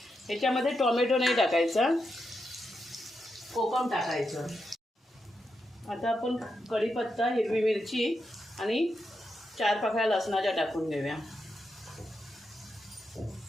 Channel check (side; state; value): both; normal; correlation 0.85